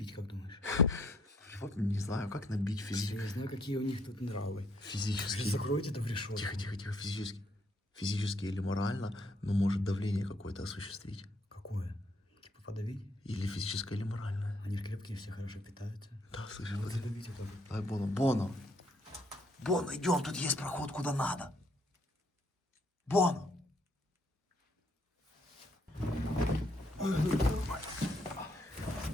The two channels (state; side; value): normal; both; correlation 0.69